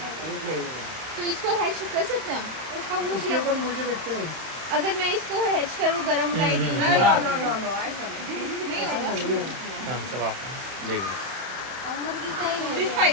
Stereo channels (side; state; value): left; late; 31 ms